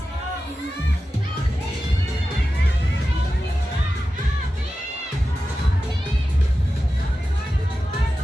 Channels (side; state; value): both; normal; correlation 0.93